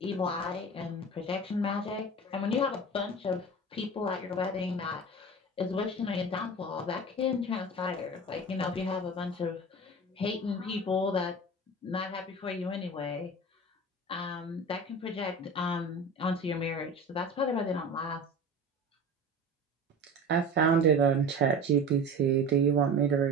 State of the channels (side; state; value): both; normal; correlation 0.33